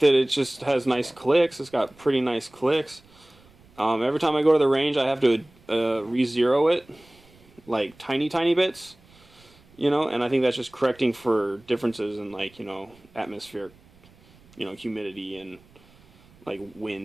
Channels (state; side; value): noise; right; rumble, 28 dB below the sound